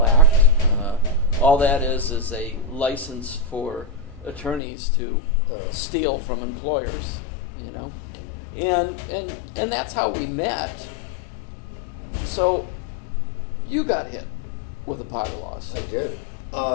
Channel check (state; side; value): drops out; right; at 4.6 s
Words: Act. All that is a license for attorneys to steal from employers, And that's how we met. So, you got hit with a PAGA lawsuit. I did.